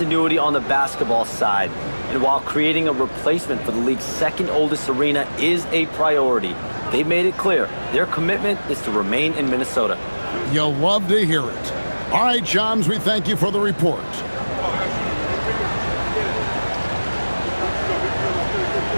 on the basketball side. And while creating a replacement for the league's 2nd oldest arena is a priority, they've made it clear their commitment is to remain in Minnesota. You'll love to hear it. All right, Shams, we thank you for the report.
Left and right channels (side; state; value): both; inverted; correlation -1.00